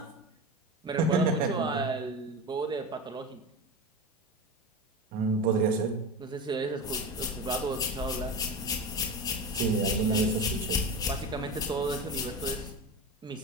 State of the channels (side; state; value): both; normal; correlation 0.25